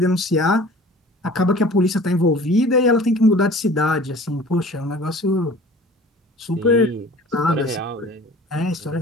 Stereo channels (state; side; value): normal; both; correlation 0.45